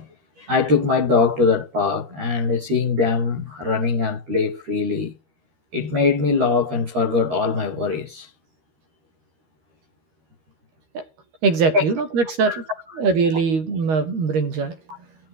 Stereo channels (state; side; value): late; left; 13 ms